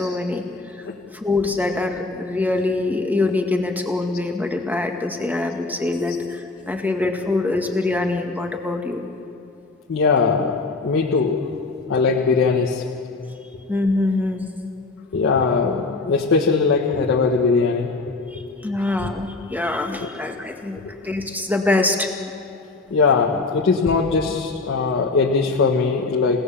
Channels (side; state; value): right; quieter; 3.5 dB